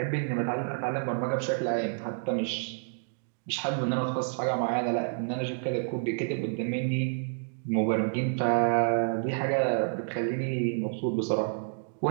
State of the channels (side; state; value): left; silent; digital silence